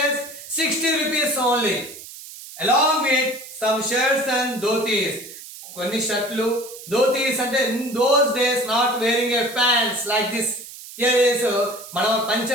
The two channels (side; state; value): right; noise; hiss, 15 dB below the sound